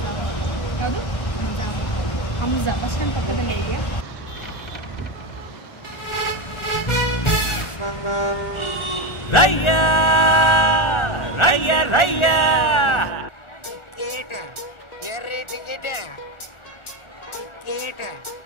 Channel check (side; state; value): right; late; 1.4 ms